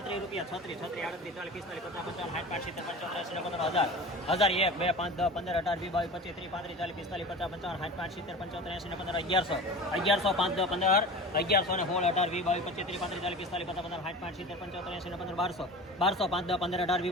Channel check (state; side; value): normal; both; correlation 0.34